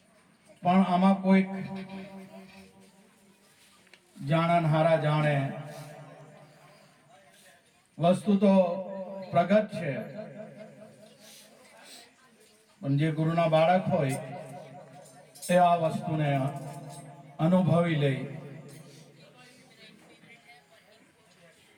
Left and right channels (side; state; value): both; identical; correlation 1.00